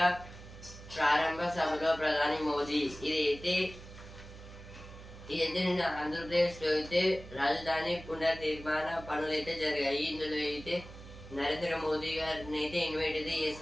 ప్రారంభ సభలో ప్రధాని మోదీ. ఇదైతే నిన్న ఆంధ్రప్రదేశ్ లో అయితే రాజధాని పునర్నిర్మాణ పనులు అయితే జరిగాయి. ఇందులో అయితే నరేంద్ర మోదీ గారిని అయితే ఇన్వైట్ అయితే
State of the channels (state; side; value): noise; right; hum, 16 dB below the sound